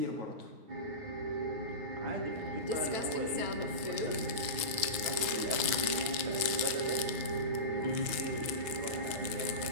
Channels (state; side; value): late; left; 9.1 ms